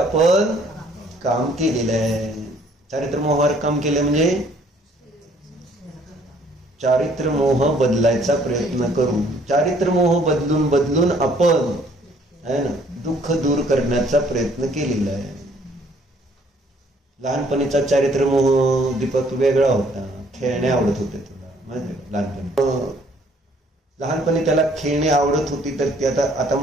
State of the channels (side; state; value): both; normal; correlation 0.61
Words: काम केलेलं आहे. चारित्र मोहावर काम केलं म्हणजे चारित्र मोह बदलायचा प्रयत्न करू. चारित्र मोह बदलून आपण है ना दुःख दूर करण्याचा प्रयत्न केलेला आहे. लहानपणीचा चारित्र मोह दीपक वेगळा होता. खेळणे आवडत होते तुला माहिती का? लहानपणी त्याला खेळणे आवडत होती, तर ती आता